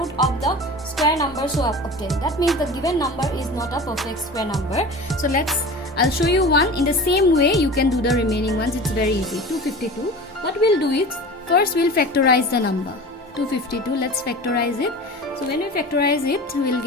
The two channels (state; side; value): normal; both; correlation 0.35